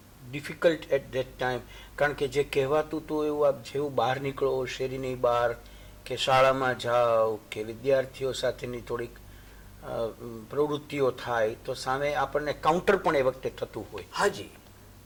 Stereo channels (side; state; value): both; identical; correlation 1.00